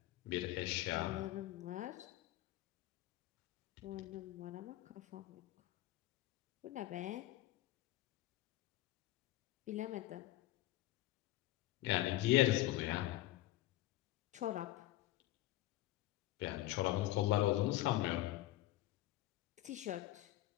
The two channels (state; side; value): quieter; right; 15.7 dB